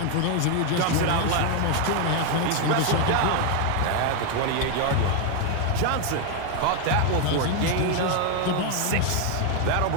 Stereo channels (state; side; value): different; both; correlation 0.01